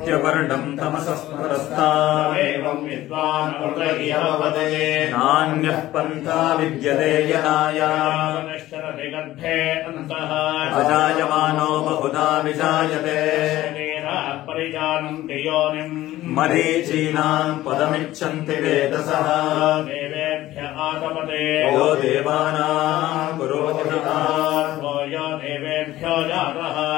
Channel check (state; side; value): quieter; right; 15.5 dB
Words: तमसस्परस्तात् नान्यः पन्था विद्यते यनाय अजायमानो बहुधा विजायते मरीचीनाम् पदमिच्छन्ति वेदसः यो देवानाम् पुरोहितः